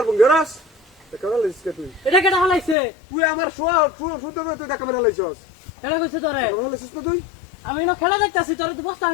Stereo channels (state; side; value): drops out; right; at 2.8 s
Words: বঙ্গরাস দেখা মার হালে তুই এটা কেটা হালাইছে তুই আমার সুন্দর তুই দেখা মার হালাইছস এটা কইছে তোরে হালাইছস তো তুই আমি না খেলা দেখতাছি তোরে তো বস্তা